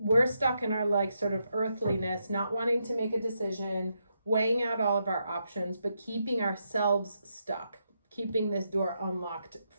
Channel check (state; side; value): inverted; both; correlation -0.82